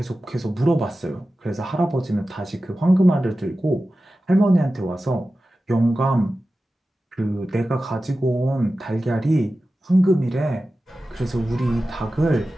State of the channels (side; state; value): both; normal; correlation 0.94